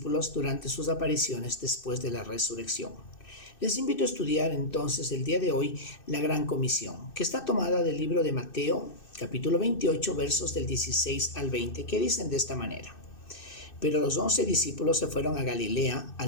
durante sus apariciones después de la resurrección. Les invito a estudiar entonces el día de hoy la Gran Comisión, que está tomada del libro de Mateo, capítulo 28, versos del 16 al 20, que dicen de esta manera: Pero los 11 discípulos se fueron a Galilea,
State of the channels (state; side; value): late; right; 2.6 ms